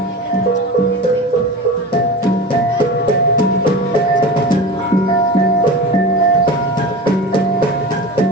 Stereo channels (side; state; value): both; normal; correlation 0.30